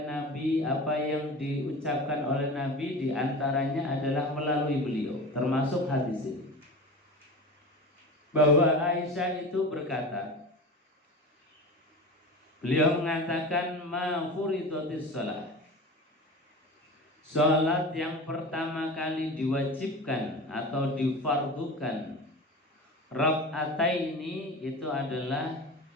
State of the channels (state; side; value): normal; both; correlation 0.32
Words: Nabi, apa yang diucapkan oleh Nabi, diantaranya adalah melalui beliau, termasuk hadis ini. Bahwa Aisyah itu berkata, beliau mengatakan, ma furidatis shalah, salat yang pertama kali diwajibkan atau difardukan rakaataini itu adalah